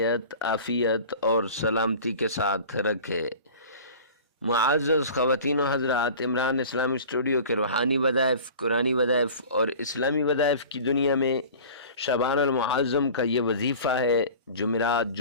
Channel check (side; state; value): both; inverted; correlation -0.40